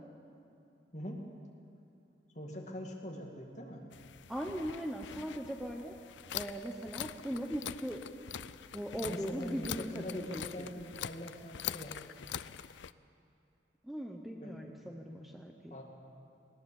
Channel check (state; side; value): normal; both; correlation 0.65